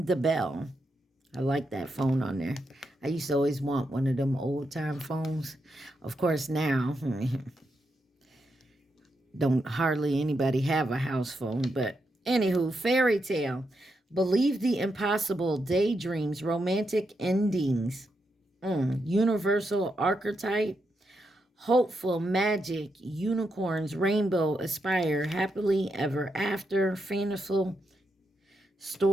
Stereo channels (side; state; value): both; normal; correlation 0.83